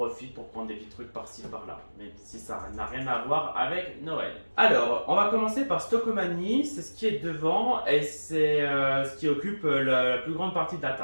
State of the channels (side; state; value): both; inverted; correlation -1.00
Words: pour prendre des petits trucs par-ci par-là, même si ça n'a rien à voir avec Noël. Alors, on va commencer par Stockomanie, c'est ce qui est devant et c'est ce qui occupe la plus grande partie de la